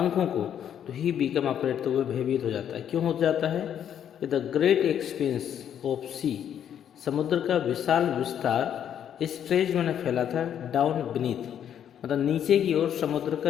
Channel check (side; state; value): right; quieter; 9.4 dB